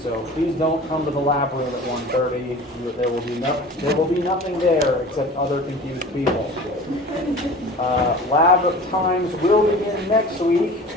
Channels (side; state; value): both; normal; correlation 0.40